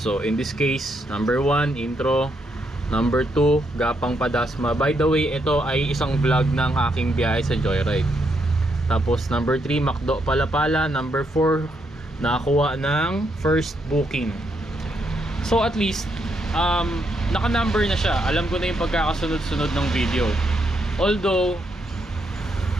in this case, number 1 intro, number 2 Gapang Padasma. By the way, ito ay isang vlog ng aking biyahe sa Joyride. Tapos number 3 Macdo Palapala. Number 4 nakakuha ng first booking. So at least naka-number na siya. Alam ko na yung pagkakasunod-sunod ng video. Although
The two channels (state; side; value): normal; both; correlation 0.78